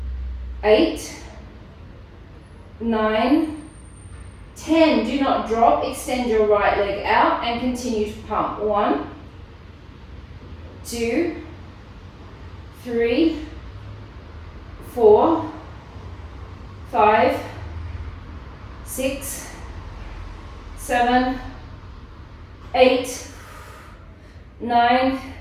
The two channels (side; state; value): both; identical; correlation 1.00